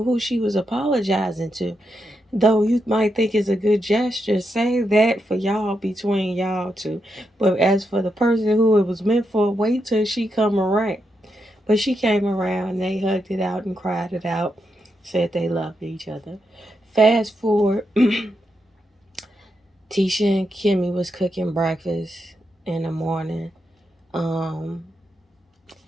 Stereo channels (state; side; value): normal; both; correlation 0.84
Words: she was apologizing to. Though you might think it's a good gesture, say that for y'all, between y'all two. But as for the person who it was meant for, wait till she come around. But she came around, they hugged it out and cried it out, said they loved each other. Fast forward, Tisha and Kimmy was cooking breakfast in the morning. Um,